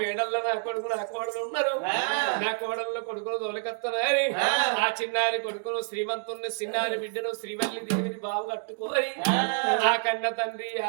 నా కొడుకు నా కోడలు ఉన్నారు నా కోడల్లో కొడుకులు తోలకత్తనారి ఆ చిన్నారి కొడుకును శ్రీమంతుని చిన్నారి బిడ్డను శ్రీవల్లి దేవిని బావు కట్టుకోని ఆ కన్న తండ్రి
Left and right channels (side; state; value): left; silent; 59 dB below the other